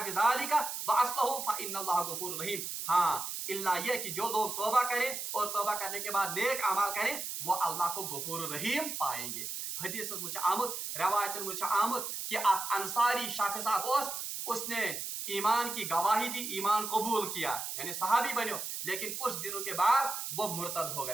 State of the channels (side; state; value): right; noise; hiss, 5 dB below the sound